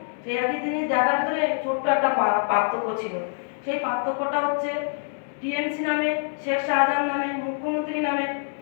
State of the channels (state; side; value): silent; right; digital silence